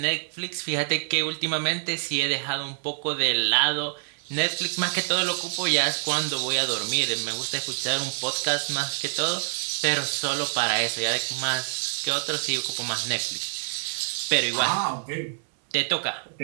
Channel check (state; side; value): silent; left; 61 dB below the other